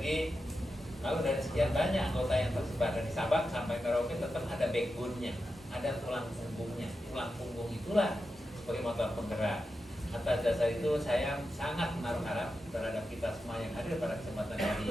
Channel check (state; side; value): normal; both; correlation 0.89